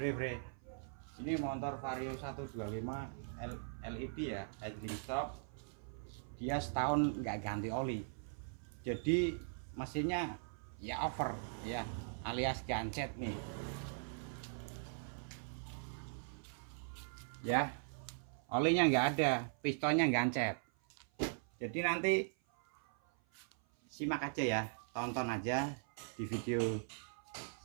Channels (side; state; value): left; silent; 51 dB below the other